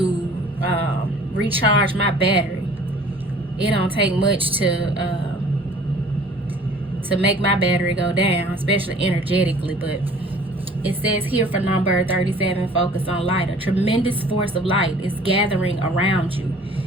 recharge my battery. It don't take much to make my battery go down, especially energetically. But it says here for number 37, focus on light. A tremendous force of light is gathering around you.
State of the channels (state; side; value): normal; both; correlation 0.51